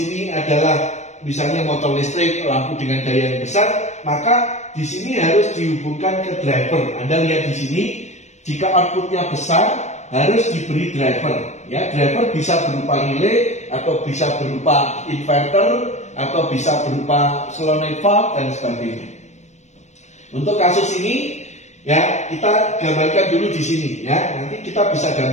adalah misalnya motor listrik, lampu dengan daya yang besar, maka di sini harus dihubungkan ke driver. Anda lihat di sini, jika outputnya besar, harus diberi driver. Ya, driver bisa berupa relay, atau bisa berupa inverter, atau bisa berupa solenoid valve dan sebagainya. Untuk kasus ini, ya kita gambarkan dulu di sini. Ya, nanti kita bisa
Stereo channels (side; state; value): right; late; 0.34 ms